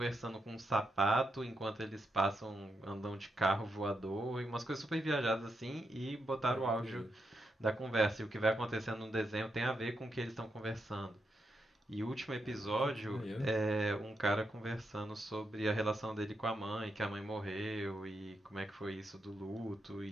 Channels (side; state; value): both; normal; correlation 0.83